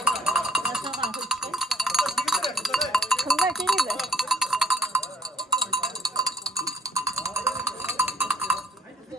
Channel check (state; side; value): normal; both; correlation 0.60